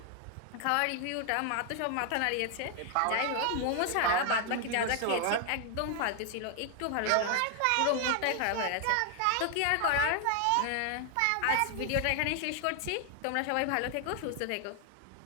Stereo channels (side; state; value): both; different; correlation 0.00